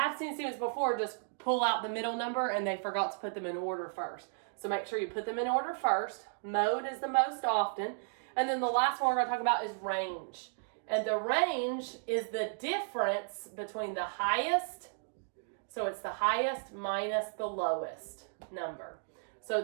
seen students before just pull out the middle number and they forgot to put them in order first. So make sure you put them in order first. Mode is the most often. And then the last one we're going to talk about is range. And the range is the difference between the highest, so it's the highest minus the lowest number. So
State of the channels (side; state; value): left; silent; digital silence